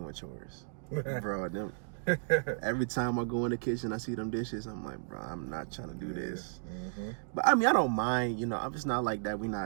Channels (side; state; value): left; silent; digital silence